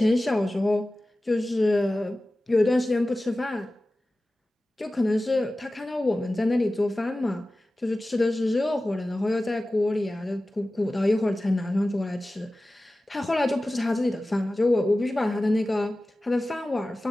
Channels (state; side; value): normal; both; correlation 0.96